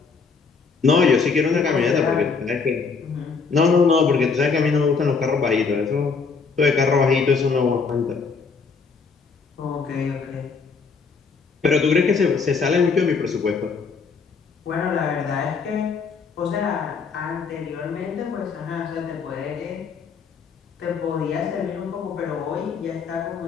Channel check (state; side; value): quieter; right; 5.1 dB